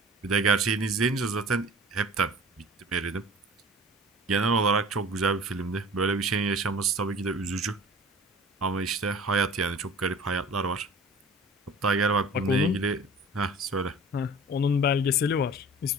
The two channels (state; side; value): normal; both; correlation 0.43